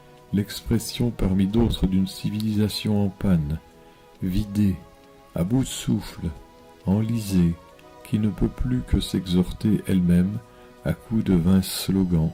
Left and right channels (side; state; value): both; identical; correlation 1.00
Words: l'expression parmi d'autres d'une civilisation en panne, vidée, à bout de souffle, enlisée, qui ne peut plus que s'exhorter elle-même, à coups de vains slogans,